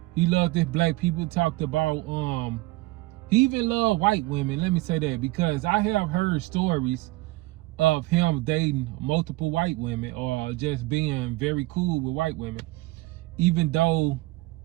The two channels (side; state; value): left; quieter; 20.5 dB